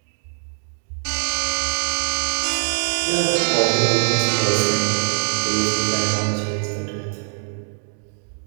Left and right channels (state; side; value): silent; left; 64 dB below the other